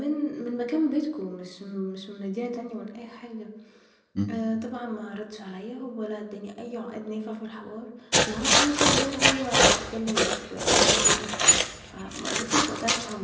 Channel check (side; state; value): both; identical; correlation 1.00